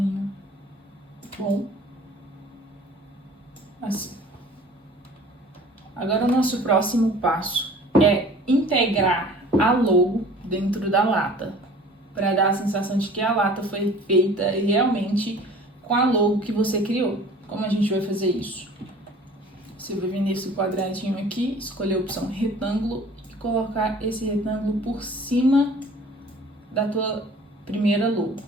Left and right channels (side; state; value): both; normal; correlation 0.47